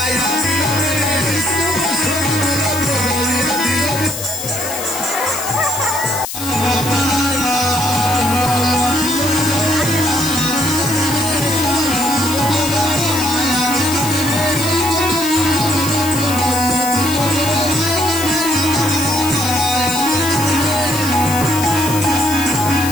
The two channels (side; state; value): left; noise; hiss, 7 dB below the sound